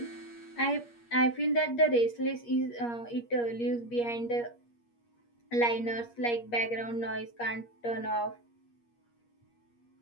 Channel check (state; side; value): late; right; 8.5 ms